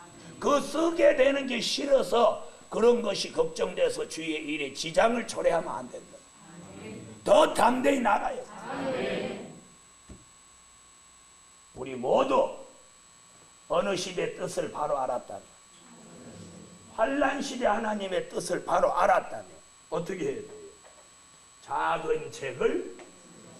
그 쓰게 되는 게 싫어서 그런 것이 걱정돼서 주의 일에 지장을 초래하면 안 된다. 더 담대히 나가요. 우리 모두 어느 시대 뜻을 바로 알았다면, 환란 시대 하나님의 뜻을 바로 알았다면 어떻게 해야 돼요? 작은 책을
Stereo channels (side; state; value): both; identical; correlation 1.00